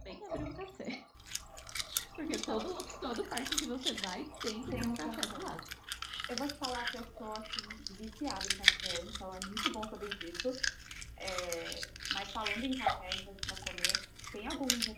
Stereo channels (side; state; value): both; identical; correlation 1.00